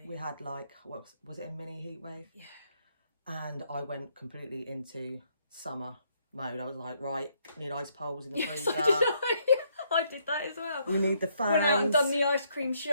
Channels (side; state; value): both; inverted; correlation -0.71